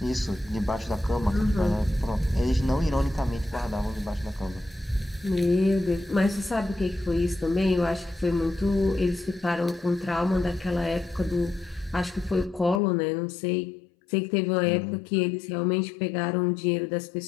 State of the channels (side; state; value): right; drops out; at 12.8 s